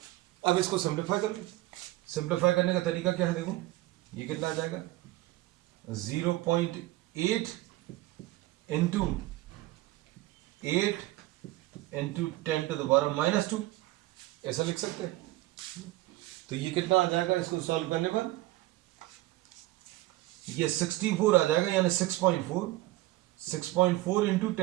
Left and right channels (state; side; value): quieter; left; 17.9 dB